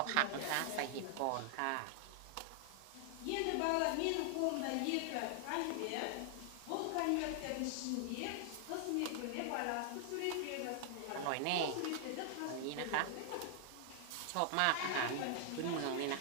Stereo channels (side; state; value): both; different; correlation 0.00